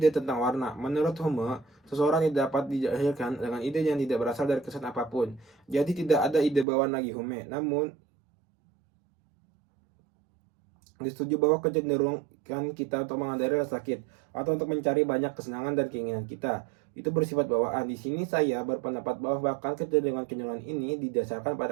tentang warna. Menurut Hume, seseorang tidak dapat dilahirkan dengan ide yang tidak berasal dari kesan apapun. Jadi tidak ada ide bawaan lagi Hume. Disetujui bahwa kecenderungan kita untuk menghindari rasa sakit atau untuk mencari banyak kesenangan dan keinginan kita itu bersifat bawaan. Di sini saya berpendapat bahwa bahkan kecenderungan-kecenderungan ini didasarkan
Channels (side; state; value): left; drops out; at 6.7 s